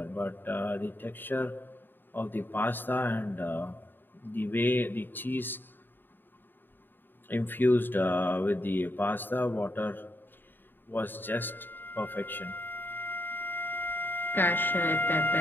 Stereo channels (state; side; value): late; right; 0.094 ms